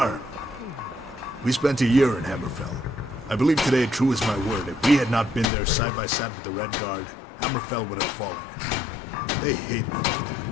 We spent a year in Hammerfell. I believe today, true as my word, if we had not been there side by side with the Red Guard, Hammerfell would have fallen. They hated me for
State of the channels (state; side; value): drops out; right; at 5.5 s